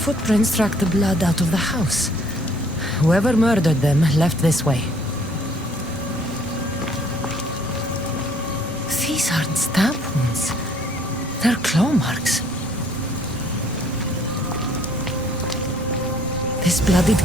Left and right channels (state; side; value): normal; both; correlation 0.60